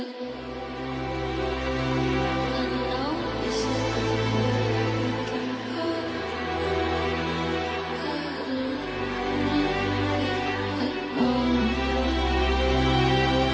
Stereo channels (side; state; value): both; identical; correlation 1.00